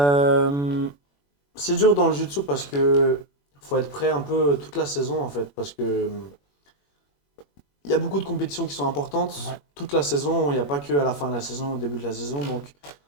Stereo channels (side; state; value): right; late; 21 ms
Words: c'est dur dans le jiu-jitsu parce que faut être prêt un peu toute la saison en fait, parce que il y a beaucoup de compétitions qui sont importantes. Ouais, Toute la saison, il n'y a pas que à la fin de la saison, au début de la saison. Donc